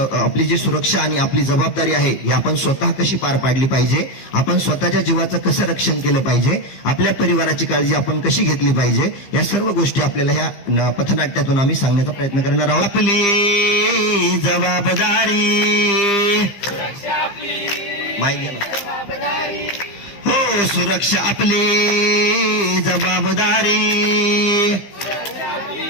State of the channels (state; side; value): late; right; 15 ms